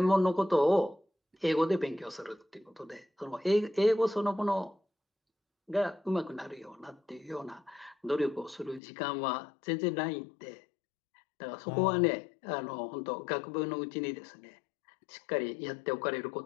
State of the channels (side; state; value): right; drops out; at 8.8 s